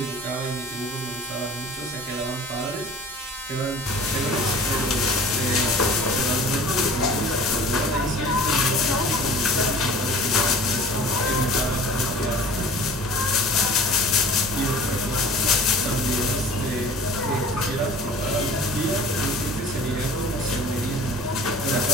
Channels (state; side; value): normal; both; correlation 0.44